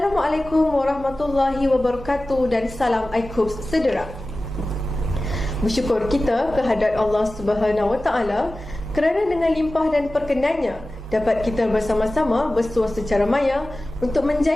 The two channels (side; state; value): both; normal; correlation 0.96